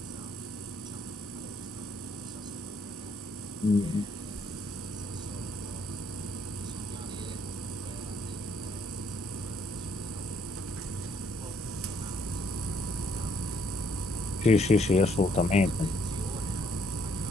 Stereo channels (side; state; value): both; normal; correlation 0.67